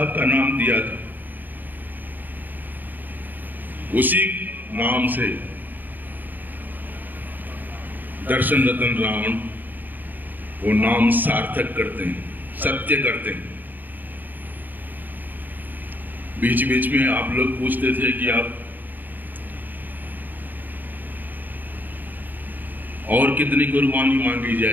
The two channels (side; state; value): left; late; 0.087 ms